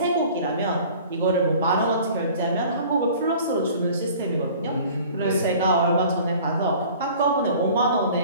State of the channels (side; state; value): both; inverted; correlation -0.47